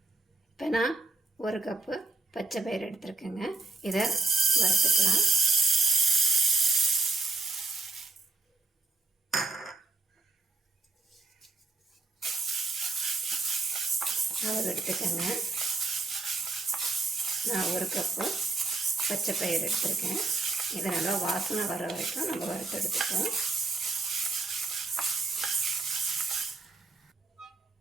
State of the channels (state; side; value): quieter; left; 3.6 dB